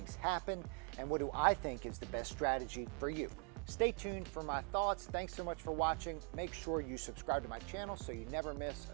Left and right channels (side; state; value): left; quieter; 38.4 dB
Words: happen? And what do I think is the best strategy for you? Stay tuned for my thoughts. Thanks so much for watching. Make sure you subscribe to my channel so you never miss